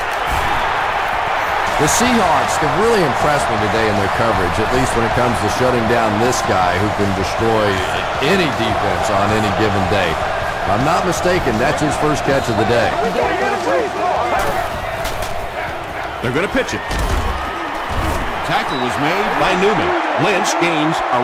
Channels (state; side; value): identical; both; correlation 1.00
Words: The Seahawks have really impressed me today in their coverage, at least when it comes to shutting down this guy who can destroy any defense on any given day. If I'm not mistaken, that's his first catch of the day. They're going to pitch it. Tackle was made by Newman. Lynch gains